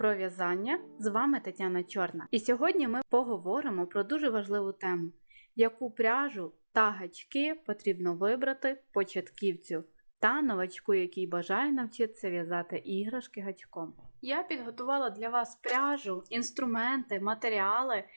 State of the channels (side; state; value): both; inverted; correlation -1.00